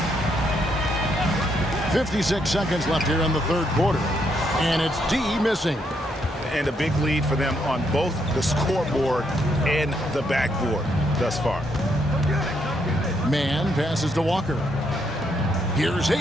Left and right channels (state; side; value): normal; both; correlation 0.75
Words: 56 seconds left here in the third quarter. And it's D missing. And a big lead for them on both the scoreboard and the backboard thus far. Mann passes to Walker. Here's